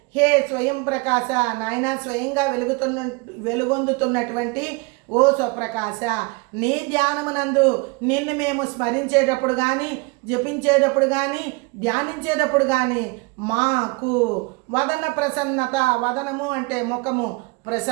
హే స్వయం ప్రకాశ, నాయన స్వయంగా వెలుగొందుతున్నటువంటి ఓ స్వప్రకాశ, నీ ధ్యానమునందు నిన్ను మేము స్మరించేటప్పుడు కానీ, జపించేటప్పుడు కానీ, ధ్యానించేటప్పుడు కానీ మాకు వదన ప్రసన్నత, వదనము అంటే ముఖము,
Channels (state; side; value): quieter; left; 27.7 dB